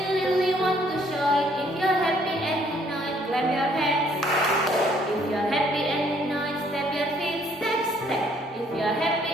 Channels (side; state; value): both; normal; correlation 0.64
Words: really want to show it. If you're happy and unite, clap your hands. If you're happy and unite, step your feet, step, step. If you're happy